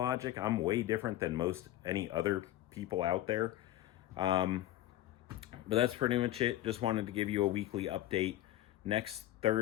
I'm way different than any other people out there. But that's pretty much it. Just wanted to give you a weekly update. Next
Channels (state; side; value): quieter; right; 14.4 dB